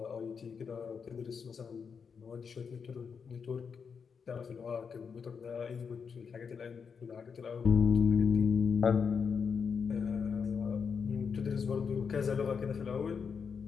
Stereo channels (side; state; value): right; quieter; 6.1 dB